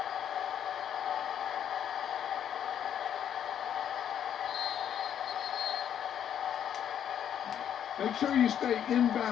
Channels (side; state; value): right; quieter; 9.4 dB